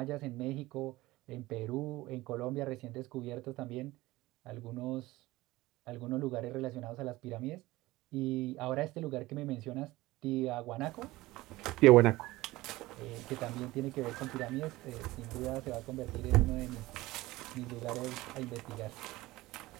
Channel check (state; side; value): quieter; left; 18.8 dB